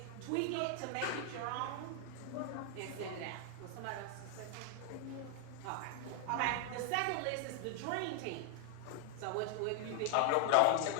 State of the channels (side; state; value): both; different; correlation 0.00